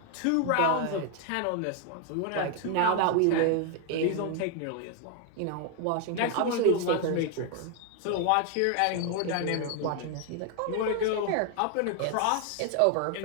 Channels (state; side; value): different; both; correlation 0.00